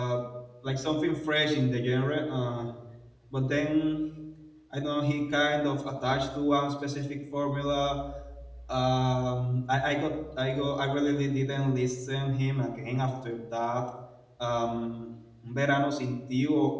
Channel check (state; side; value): identical; both; correlation 1.00